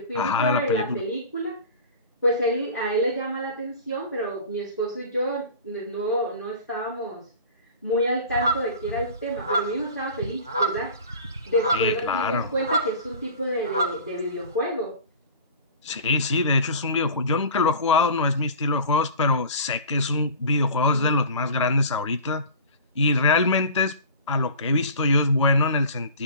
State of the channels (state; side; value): inverted; both; correlation -0.39